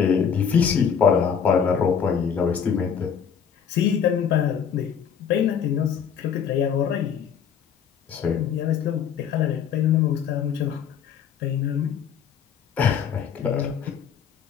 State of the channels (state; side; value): quieter; right; 7.4 dB